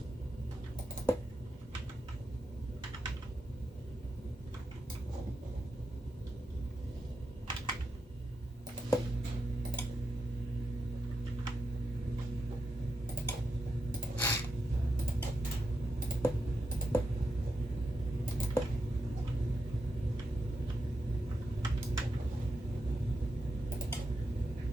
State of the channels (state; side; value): normal; both; correlation 0.86